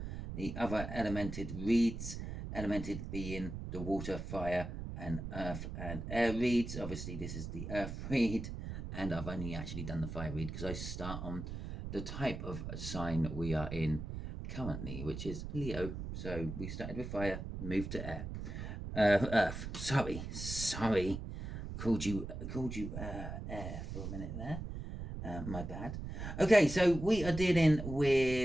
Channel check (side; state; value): right; noise; rumble, 7 dB below the sound